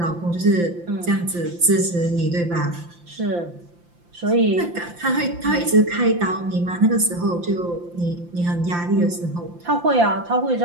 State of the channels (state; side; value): late; left; 5.8 ms